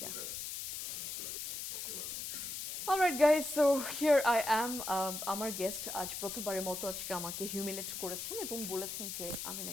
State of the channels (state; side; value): noise; left; hiss, 5 dB below the sound